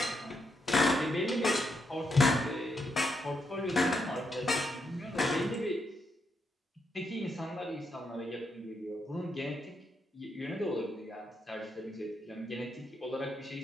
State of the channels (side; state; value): both; normal; correlation 0.80